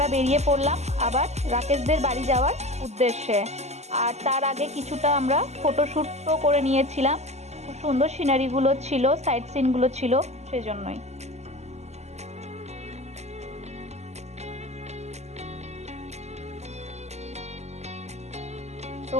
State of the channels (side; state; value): left; late; 0.33 ms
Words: বেরিয়ে পড়লাম আবার রাকেশদের বাড়ি যাওয়ার উদ্দেশ্যে। আর তার আগে কিছুটা আমরা ফটোশ্যুটও করে নিয়েছিলাম, খুব সুন্দর সিনারিগুলো ছিল, সাইট সিনগুলো ছিল, সেজন্যই। তো